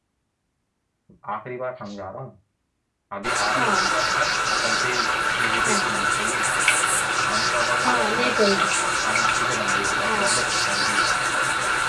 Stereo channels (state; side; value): identical; both; correlation 1.00